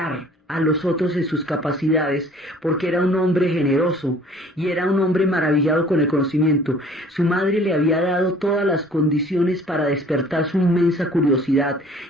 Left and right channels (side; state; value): both; normal; correlation 0.52